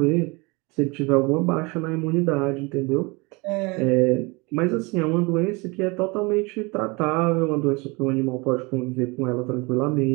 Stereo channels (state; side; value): quieter; left; 26.9 dB